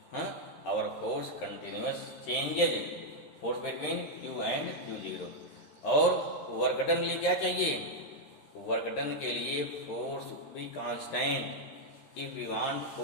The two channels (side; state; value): right; late; 13 ms